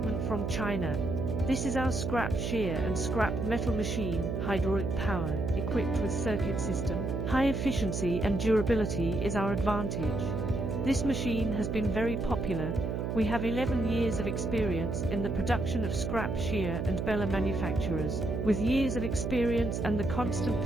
from China. This is our scrap shear and scrap metal machine, hydraulic power, equipped with circuit system. High efficiency and durability is our advantage. This machine has been very popular. We have 11 years of experience in the production of scrap shear and baler manufacturers. With years of experience and the constant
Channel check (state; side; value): noise; right; hum, 1 dB below the sound